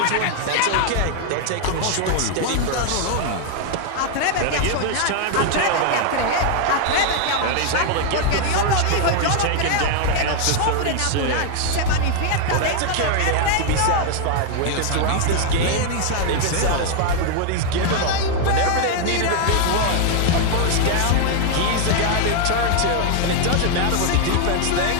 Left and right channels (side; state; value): both; different; correlation 0.00